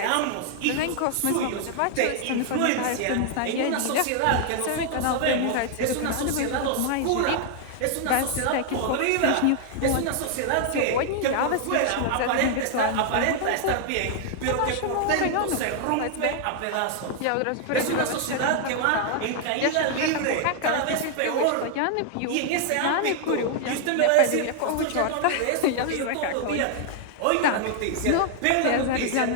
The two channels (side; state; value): both; different; correlation 0.00